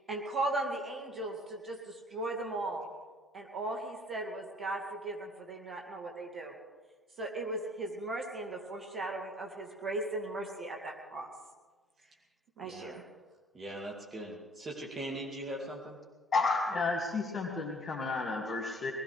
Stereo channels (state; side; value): normal; both; correlation 0.55